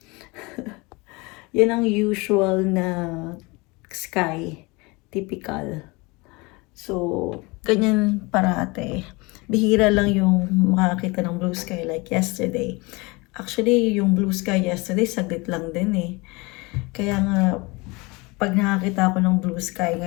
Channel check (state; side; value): quieter; right; 25.6 dB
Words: Yan ang usual na sky. Typical. So, ganyan parate. Bihira lang yung makakita ng blue sky like yesterday. Actually, yung blue sky yesterday, saglit lang din eh. Kaya nga, pag nakakita ako ng blue sky